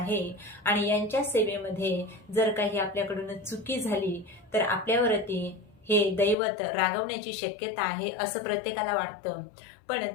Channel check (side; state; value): right; drops out; at 6.4 s